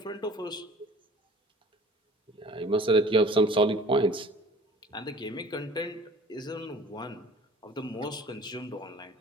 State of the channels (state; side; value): normal; both; correlation 0.48